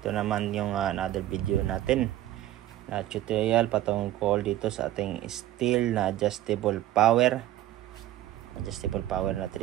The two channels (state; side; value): quieter; left; 14.1 dB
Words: naman yung another video natin na tutorial patungkol dito sa ating steel na adjustable power na